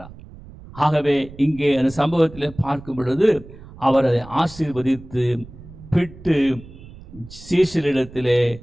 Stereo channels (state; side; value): noise; right; rumble, 18 dB below the sound